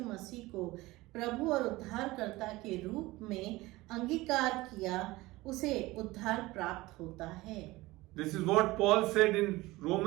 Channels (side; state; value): left; quieter; 19.8 dB